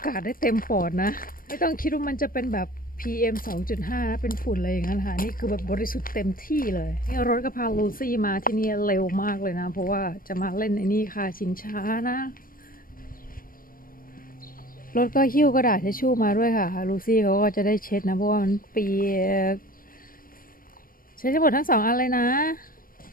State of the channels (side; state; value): right; late; 0.41 ms